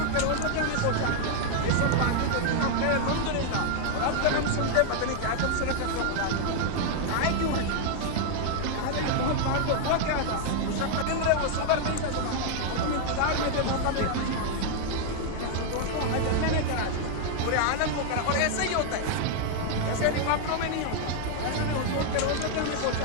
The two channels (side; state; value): both; different; correlation 0.00